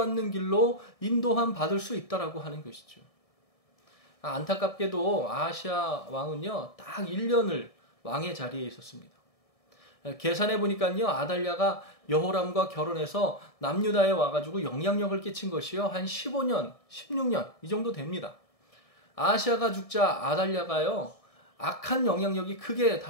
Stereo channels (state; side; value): late; right; 1.6 ms